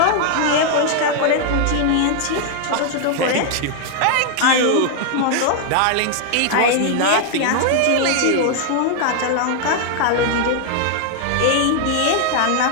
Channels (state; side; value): different; both; correlation 0.00